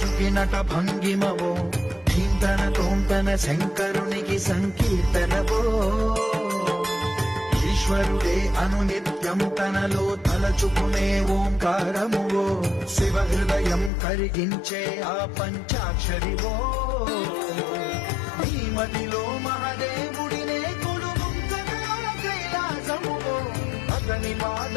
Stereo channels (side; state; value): right; drops out; at 13.9 s